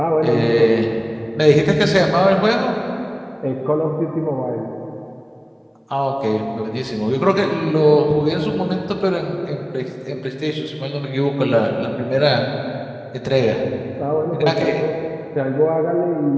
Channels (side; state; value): both; identical; correlation 1.00